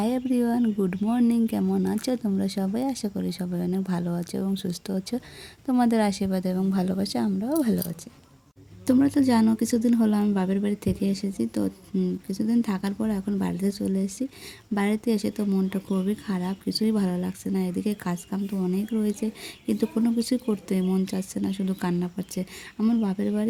এভরিওয়ান, গুড মর্নিং, কেমন আছো তোমরা সবাই? আশা করি সবাই অনেক ভালো আছো এবং সুস্থ আছো। তোমাদের আশীর্বাদ এবং ভালোবাসা আমরাও ভালো আছি। তোমরা তো জানো কিছুদিন হলো আমি বাপের বাড়ি থেকে এসেছি। তো কিছুদিন থাকার পর এখন বাড়িতে চলে এসেছি। বাড়িতে এসে তো মনটা খুবই খারাপ, কিছুই ভালো লাগছে না। এদিকে কাজকাম তো অনেক রয়েছে, কিন্তু কোনো কিছুই করতে মন চাচ্ছে না, শুধু কান্না পাচ্ছে। আমার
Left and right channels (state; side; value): identical; both; correlation 1.00